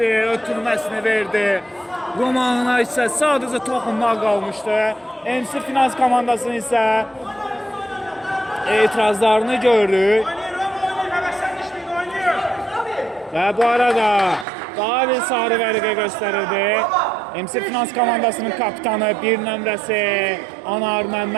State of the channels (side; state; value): left; drops out; at 14.5 s